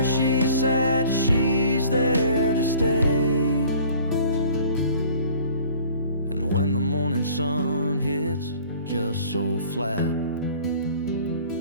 she sat, she's there to stay. And when the morning sun hits just so flat,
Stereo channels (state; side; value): inverted; both; correlation -0.50